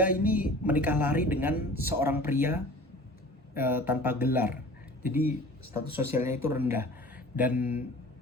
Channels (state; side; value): normal; both; correlation 0.43